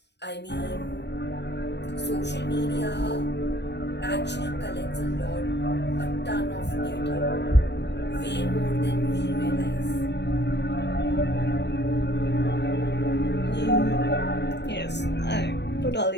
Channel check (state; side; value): late; right; 0.50 ms